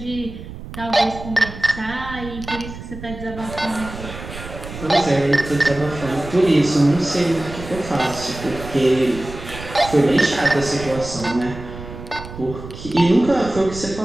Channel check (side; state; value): right; noise; rumble, 12 dB below the sound